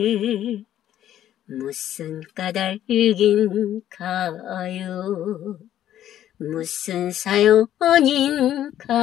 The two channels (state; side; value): quieter; right; 11.7 dB